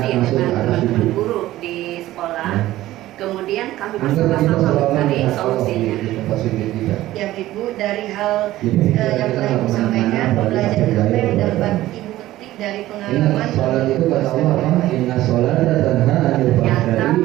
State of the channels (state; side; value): quieter; left; 15.5 dB